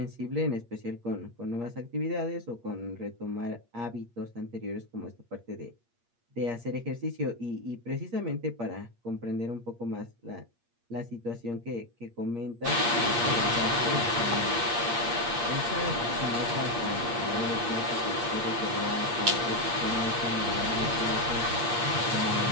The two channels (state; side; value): late; left; 8.6 ms